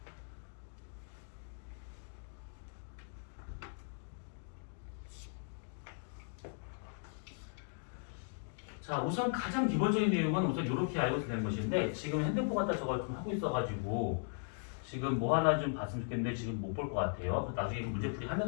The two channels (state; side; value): silent; right; digital silence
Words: 자, 우선 가장 기본적인 내용은 우선 이렇게 알고 되는 것인데 지금 핸드폰 갖다 저걸 좀 하고 있어가지고 지금 뭐 하나 좀 봤으면 좋겠는데 지금 못 볼 것 같아요. 나중에 문제풀이